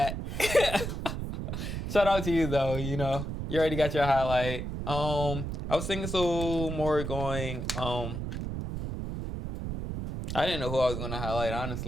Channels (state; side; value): noise; right; rumble, 5 dB below the sound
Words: Shout out to you though. You know, you already got your highlight. I was thinking so more going. I didn't know who I was going to highlight,